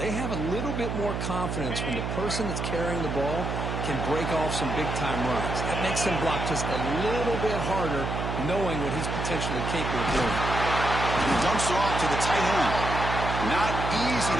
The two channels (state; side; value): noise; right; hum, 3 dB below the sound